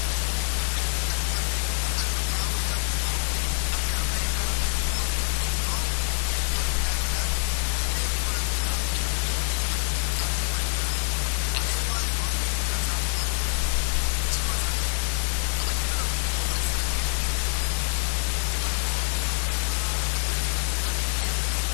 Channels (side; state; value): right; silent; 61 dB below the other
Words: வந்து அப்படியே லண்டனுக்கு வந்து லண்டனுக்கு அப்புறம் ஆப்பிரிக்காவுக்கு ஜும்மா வந்து அப்படியே அமெரிக்காவில் போய் இந்த ஜும்மா அப்படி முடியுதோ 24 மணி நேரத்தில், அதே போல் பெருநாள் தொழுகையும் அப்படியே வர சாத்தியமா இல்லையா? அதே மாதிரி நோன்பையும் கொண்டு வர சாத்தியமா இல்லையா? நிச்சயமாக சாத்தியம். அப்போ இதில் வந்து இன்னொரு சில கேள்விகள் வரும். இப்போ நோன்பு பெருநா அந்த பிறைகள் எல்லாம் எப்படி வந்து